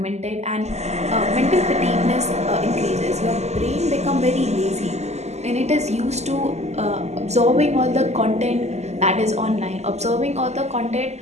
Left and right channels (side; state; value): left; late; 0.33 ms